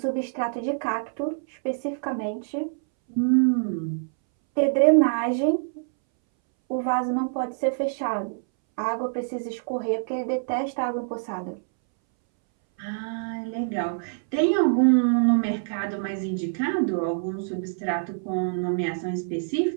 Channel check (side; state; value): left; silent; 61 dB below the other